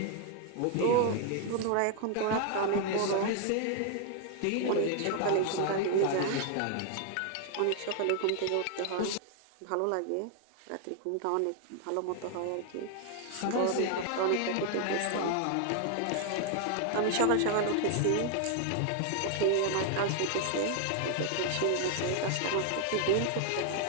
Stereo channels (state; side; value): different; both; correlation 0.00